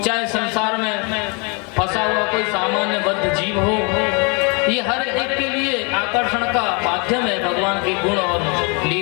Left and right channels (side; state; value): right; quieter; 32.6 dB